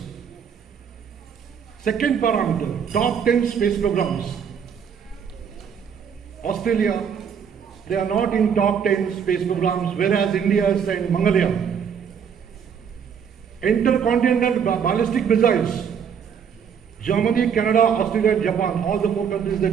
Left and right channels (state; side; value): quieter; left; 7.4 dB